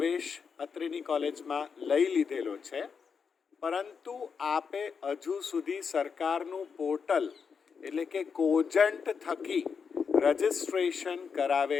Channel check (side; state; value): right; quieter; 6.0 dB